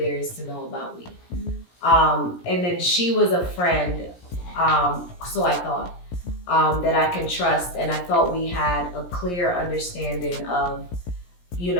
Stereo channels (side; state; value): right; late; 17 ms